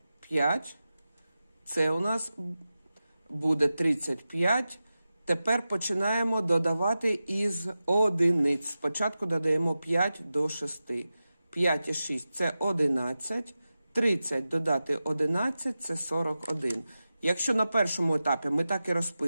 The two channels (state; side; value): inverted; both; correlation -0.94